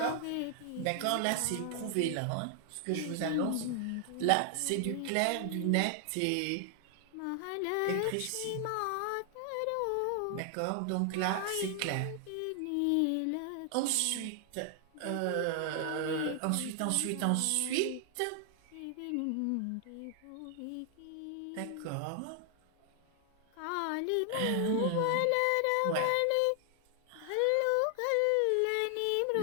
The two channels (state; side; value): different; both; correlation 0.00